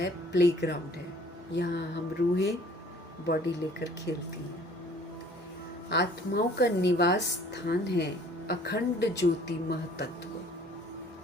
प्लेग्राउंड है। यहाँ हम रूहें बॉडी लेकर खेलती हैं। आत्माओं का निवास स्थान है अखंड ज्योति महतत्व।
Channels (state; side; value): normal; both; correlation 0.54